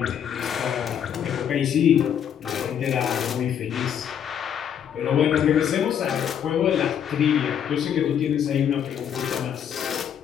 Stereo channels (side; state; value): right; quieter; 8.8 dB